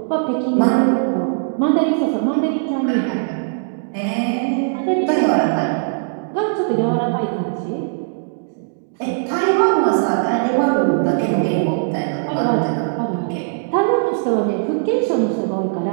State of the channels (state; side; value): silent; left; digital silence